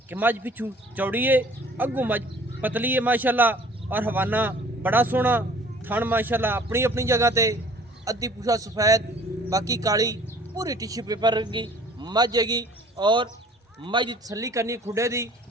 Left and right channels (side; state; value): both; normal; correlation 0.52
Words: कि मज पिछू चौड़ी है, अग्गू मज पतली है माशाअल्लाह। और हवाना बड़ा सोहना, थन माशाअल्लाह अपनी अपनी जगह ते। अद्धी पूछा सफेद, बाकी काली, पूरी टिश्यू पेपर की मज हैगी। और मज की तसली करनी खुडे दी,